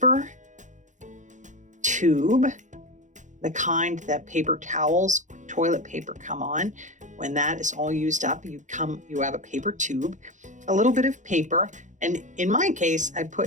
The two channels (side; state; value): left; late; 0.36 ms